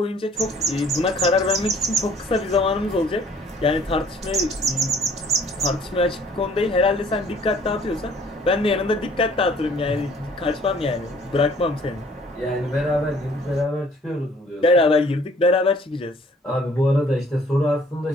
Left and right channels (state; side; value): normal; both; correlation 0.57